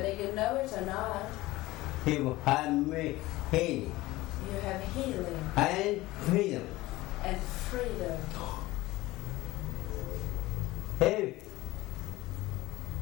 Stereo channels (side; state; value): right; quieter; 18.7 dB